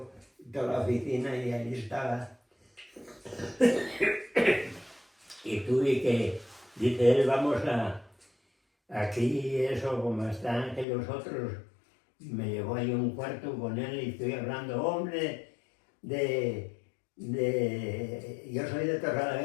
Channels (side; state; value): right; drops out; at 10.9 s